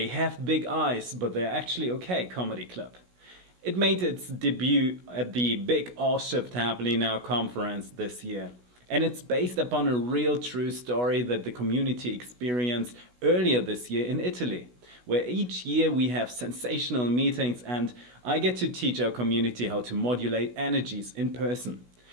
Have Big Eyes, but They're Actually Okay comedy club. It made its debut at the Big All Shift Happening Now conference this year. And it's based upon a real true story that the community experienced earlier this year in Italy, where each year we have sensational meetings and I get to teach our community how to modulate energies in person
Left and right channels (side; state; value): left; late; 16 ms